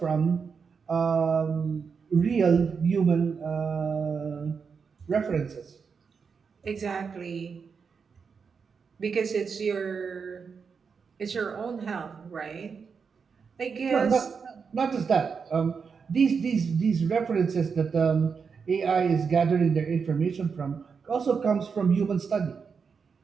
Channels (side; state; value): left; quieter; 5.8 dB